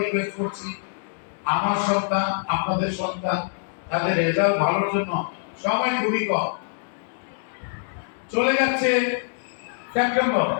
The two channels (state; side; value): silent; right; digital silence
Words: রিকোয়েস্ট করছি, আমার সন্তান আপনাদের সন্তান তাদের রেজাল্ট ভালোর জন্য সময় খুবই কম, চলে যাচ্ছে সেপ্টেম্বর,